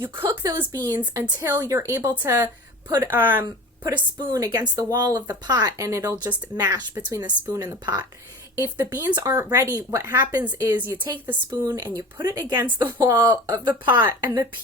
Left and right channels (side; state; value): both; normal; correlation 0.37